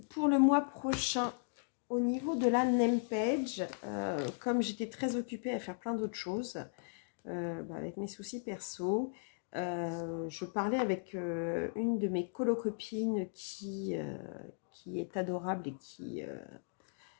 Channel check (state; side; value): silent; right; digital silence